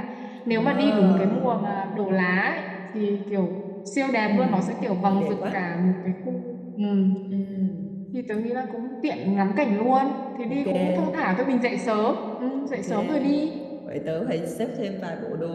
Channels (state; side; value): identical; both; correlation 1.00